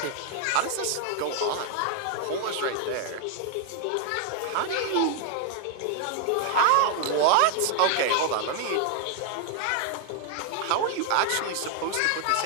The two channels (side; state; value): both; different; correlation 0.00